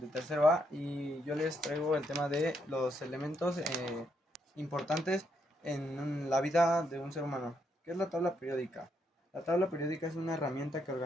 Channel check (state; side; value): normal; both; correlation 0.77